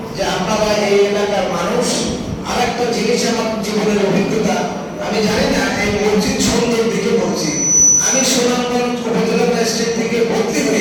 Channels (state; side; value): identical; both; correlation 1.00